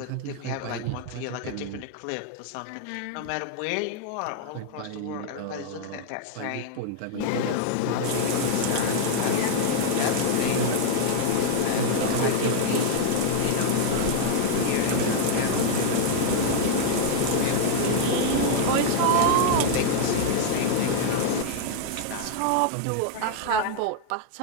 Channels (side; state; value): both; different; correlation 0.00